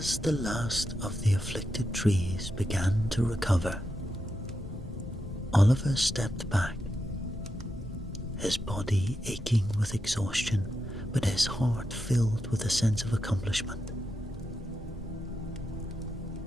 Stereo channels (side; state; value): both; normal; correlation 0.86